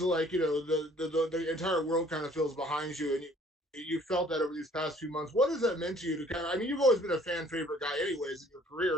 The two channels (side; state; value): both; normal; correlation 0.57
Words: of like the entire world kind of feels behind you, and you felt that over these past few months. What has that meant to you to kind of? I mean, you've always been a fan favorite guy, anyways, in your